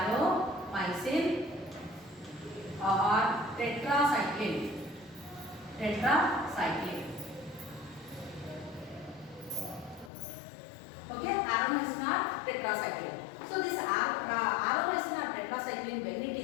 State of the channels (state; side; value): drops out; right; at 10.1 s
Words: or tetracycline. Okay, aromycin or tetracycline. So this aromycin or tetracycline, when it